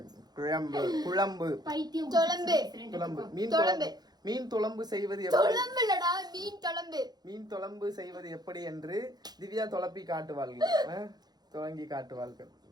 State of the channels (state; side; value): late; left; 0.19 ms